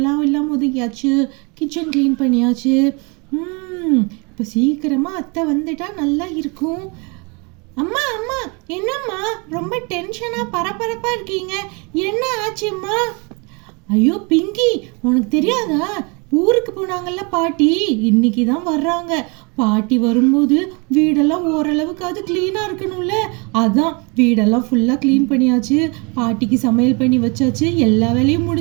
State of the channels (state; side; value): quieter; left; 30.9 dB